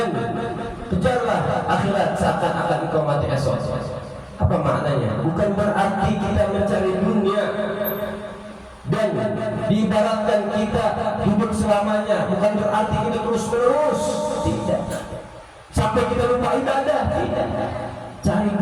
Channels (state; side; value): identical; both; correlation 1.00